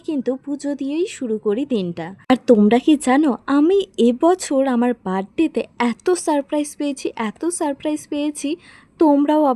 পুজো দিয়েই শুরু করি দিনটা। আর তোমরা কি জানো আমি এবছর আমার বার্থডেতে এত সারপ্রাইজ পেয়েছি, তোমরাও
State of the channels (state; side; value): identical; both; correlation 1.00